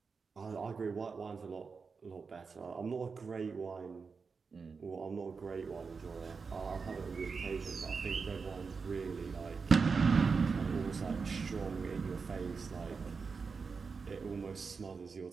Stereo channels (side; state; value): left; quieter; 5.0 dB